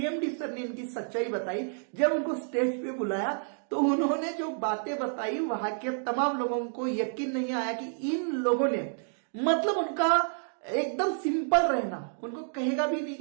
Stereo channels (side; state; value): left; silent; digital silence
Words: सर ने इनकी सच्चाई बताई। जब उनको स्टेज पे बुलाया तो उन्होंने जो बातें बताई, वहां के तमाम लोगों को यकीन नहीं आया कि इन लोगों ने, मतलब उनका एकदम सिंपल रहना, उनको कहेगा भी नहीं